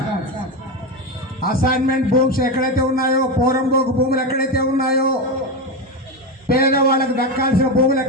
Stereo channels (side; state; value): both; normal; correlation 0.14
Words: అసైన్మెంట్ భూమ్స్ ఎక్కడైతే ఉన్నాయో, పోరంబోకు భూములు ఎక్కడైతే ఉన్నాయో, పేదవాళ్ళకు దక్కాల్సిన భూములు